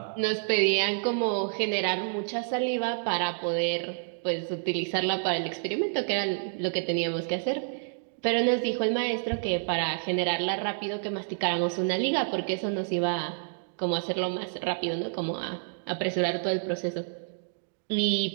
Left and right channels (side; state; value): left; silent; digital silence